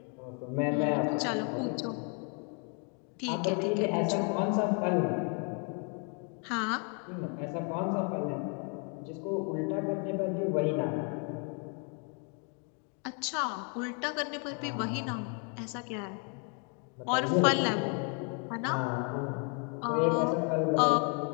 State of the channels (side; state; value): right; quieter; 39.0 dB